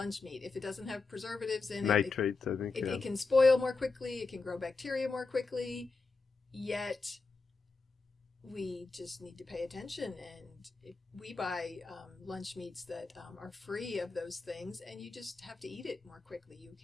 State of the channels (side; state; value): right; quieter; 3.9 dB